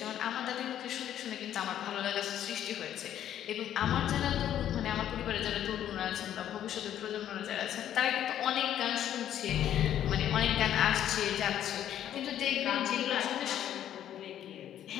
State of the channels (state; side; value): quieter; right; 10.9 dB